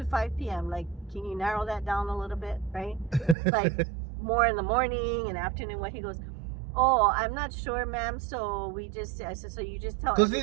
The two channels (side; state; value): left; drops out; at 3.4 s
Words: 5 p.m. Like, can you narrow that down a little bit, right? Like, more in the morning and afternoon. What he goes, oh, I'm not sure, ma'am. So I said, so you just tell Because he's